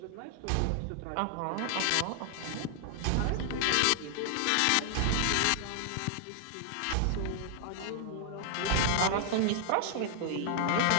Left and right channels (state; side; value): different; both; correlation 0.00